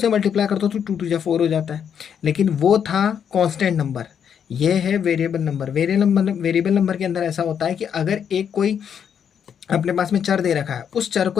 मल्टीप्लाई करता हूँ तो 2 2 4 हो जाता है, लेकिन वो था कांस्टेंट नंबर, ये है वेरिएबल नंबर। वेरिएबल नंबर के अंदर ऐसा होता है कि अगर एक कोई अपने पास में चर दे रखा है, उस चर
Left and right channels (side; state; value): right; quieter; 8.0 dB